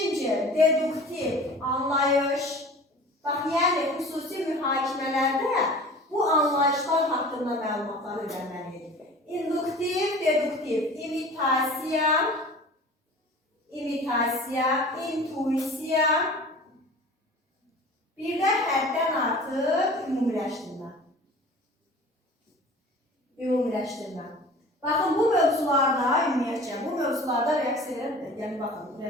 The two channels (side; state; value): both; normal; correlation 0.42